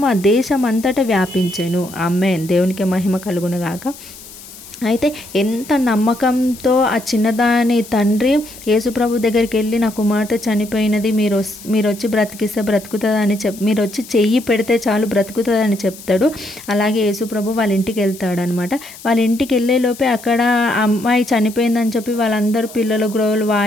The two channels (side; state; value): left; noise; hiss, 17 dB below the sound